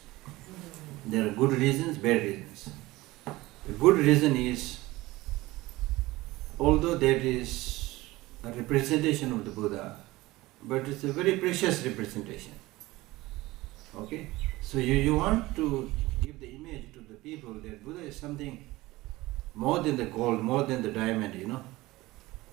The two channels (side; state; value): left; quieter; 19.3 dB